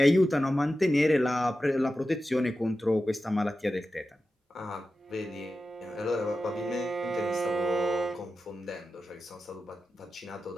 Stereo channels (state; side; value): normal; both; correlation 0.92